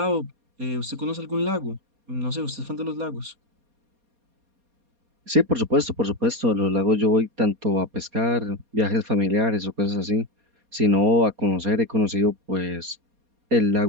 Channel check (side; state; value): left; late; 4.2 ms